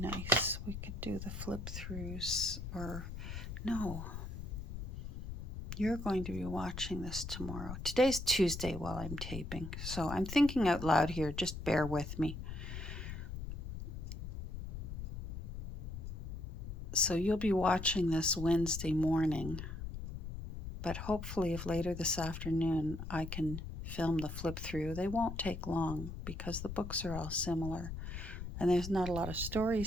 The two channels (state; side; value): noise; left; rumble, 7 dB below the sound